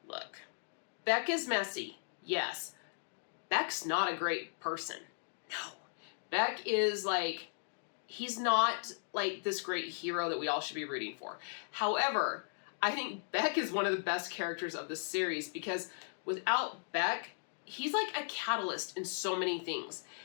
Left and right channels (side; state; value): right; silent; digital silence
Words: look, Beck is messy, yes. Beck's not a great person, no. Beck is like, he's not like this great hero that we all should be rooting for. However, I think Beck is one of the best characters of the series because without Beck, he's like a catalyst in so many things.